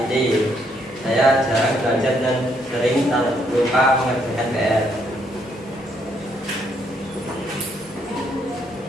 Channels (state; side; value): normal; both; correlation 0.72